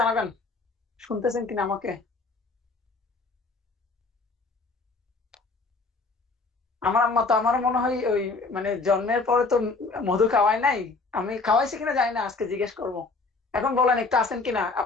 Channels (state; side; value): quieter; right; 3.8 dB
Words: শুনতেছেন কিনা? আমাকে আমার আম্মা তো আমার মনে হয় ওই মানে জন্মের পরে তো মধু খাওয়াই নাই। আমি খাওয়াইছি কিনা জানি না, আজকে জিজ্ঞেস করব। এখন বলেন একটু আছেন কিনা,